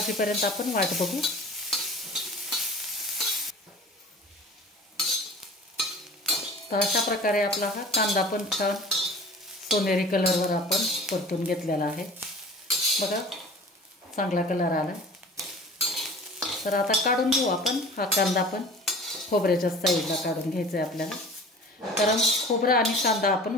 आपण वाट बघू। तर अशा प्रकारे आपला हा कांदा पण छान सोनेरी कलरवर आपण परतून घेतलेला आहे। बघा चांगला कलर आला। तर आता काढून घेऊ आपण हा कांदा पण खोबऱ्याच्या साईडला काढून घ्यायचा आहे आपल्याला, कारण खोबरं आणि कांदा आपण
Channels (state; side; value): normal; both; correlation 0.42